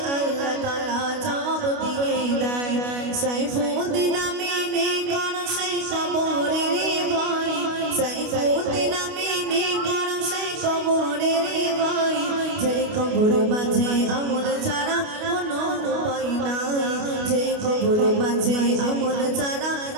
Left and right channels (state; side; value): late; left; 29 ms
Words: আল্লাহ তাআলা জবাব দিয়ে দেয় সাইফুদ্দিন আমিনী কোন সেই কবরের ভয় সাইফুদ্দিন আমিনী কোন সেই কবরের ভয় যে কবর মাঝে আমল ছাড়া কোনো উপায় নাই যে কবর মাঝে আমল ছাড়া